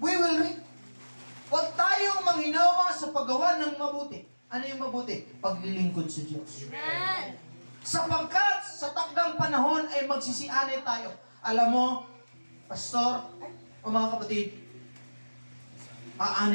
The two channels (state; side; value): inverted; both; correlation -1.00